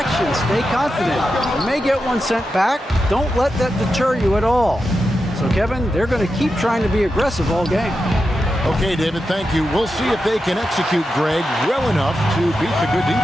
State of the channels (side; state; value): both; normal; correlation 0.89